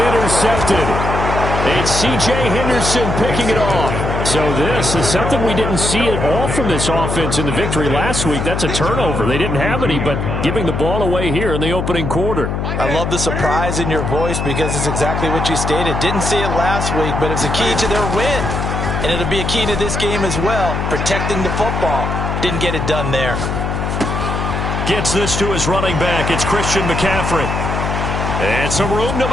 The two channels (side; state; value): left; noise; hum, 2 dB below the sound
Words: intercepted. It's C.J. Henderson picking it off. So this is something we didn't see at all from this offense in the victory last week. That's a turnover. They didn't have any, but giving the ball away here in the opening quarter. I love the surprise in your voice because it's exactly what you stated. Didn't see it last week, but it's a key to their win. And it'll be a key to this game as well, protecting the football. Didn't get it done there. Gets this to his running back. It's Christian McCaffrey. And some room to